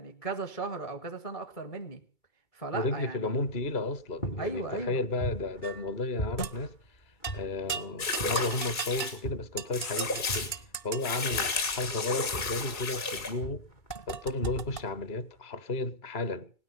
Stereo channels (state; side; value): late; right; 2.3 ms